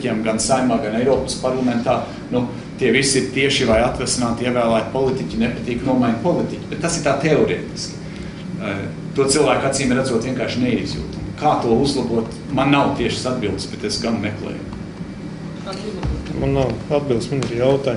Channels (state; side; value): identical; both; correlation 1.00